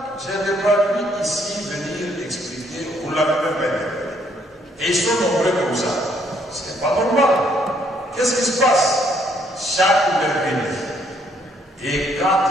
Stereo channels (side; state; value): both; normal; correlation 0.68